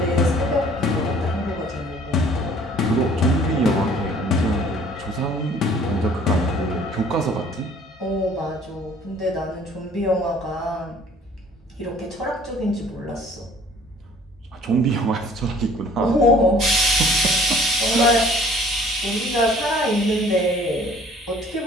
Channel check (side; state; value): both; normal; correlation 0.54